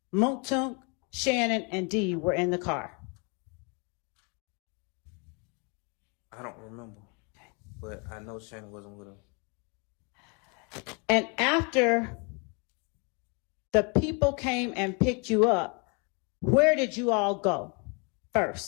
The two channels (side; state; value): right; quieter; 34.0 dB